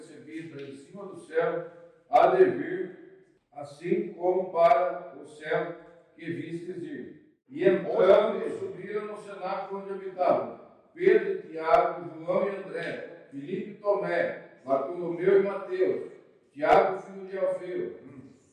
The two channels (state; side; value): identical; both; correlation 1.00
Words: em cima do céu, há de vir, assim como para o céu que vistes ir. E entrando, subiram no cenáculo onde habitavam Pedro, Tiago, João e André, Filipe e Tomé, Bartolomeu e Mateus, Tiago, filho de Alfeu,